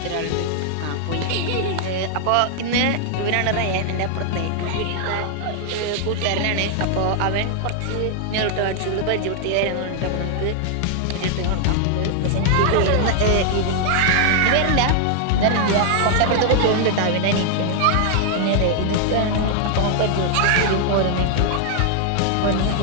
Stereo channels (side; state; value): both; different; correlation 0.00